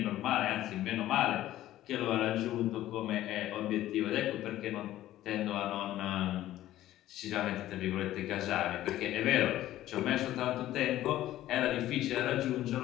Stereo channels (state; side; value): quieter; right; 14.1 dB